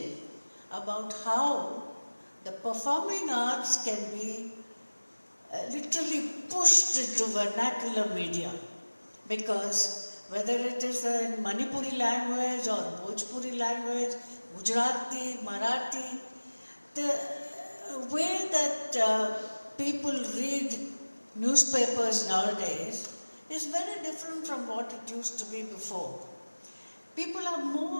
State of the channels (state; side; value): inverted; both; correlation -1.00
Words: about how the performing arts can be literally pushed into vernacular media, because whether it is in Manipuri language or Bhojpuri language, Gujarati, Marathi, the way that people read newspapers nowadays is very different from what it used to be before. People are